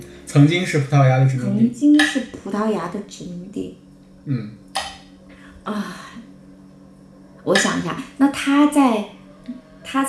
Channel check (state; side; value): identical; both; correlation 1.00